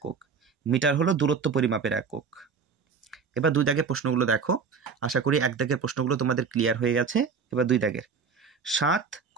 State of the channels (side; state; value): left; quieter; 5.8 dB